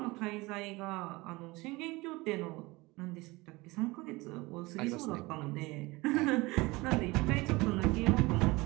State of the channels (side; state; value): left; quieter; 22.4 dB